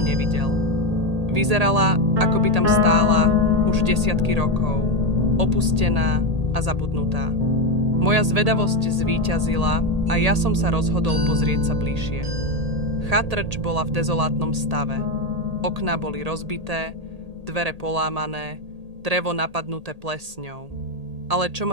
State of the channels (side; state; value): left; late; 1.8 ms